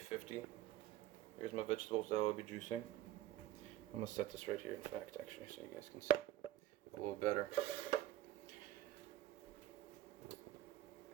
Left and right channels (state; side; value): quieter; left; 13.7 dB